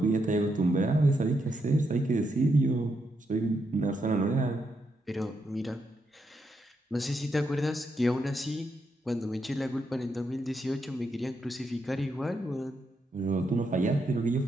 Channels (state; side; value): normal; both; correlation 0.81